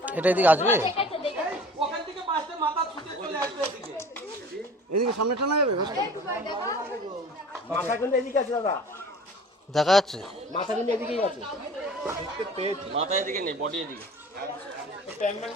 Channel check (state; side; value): normal; both; correlation 0.44